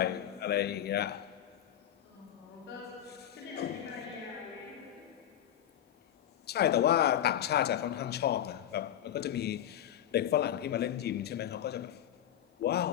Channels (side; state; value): right; quieter; 10.9 dB